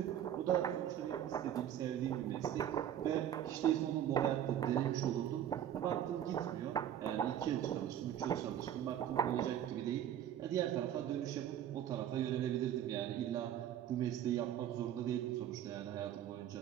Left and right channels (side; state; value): left; quieter; 10.6 dB